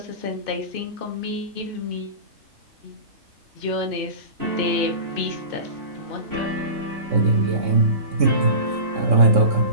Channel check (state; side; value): late; left; 3.6 ms